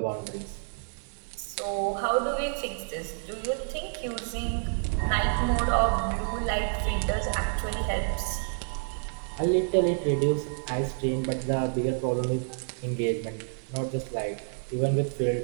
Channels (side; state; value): left; silent; digital silence